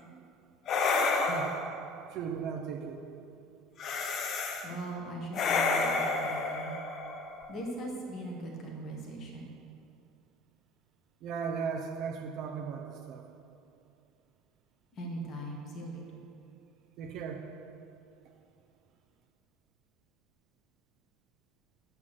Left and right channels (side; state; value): both; normal; correlation 0.47